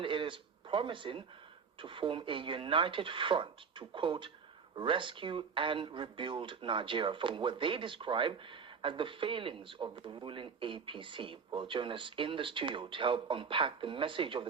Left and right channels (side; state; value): left; quieter; 5.9 dB